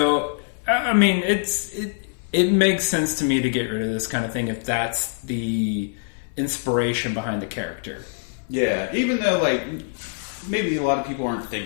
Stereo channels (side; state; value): right; silent; 63 dB below the other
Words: I mean, it makes sense to me to get rid of this kind of thing if that's the inspiration behind the character. Yeah, even though like maybe a lot of people aren't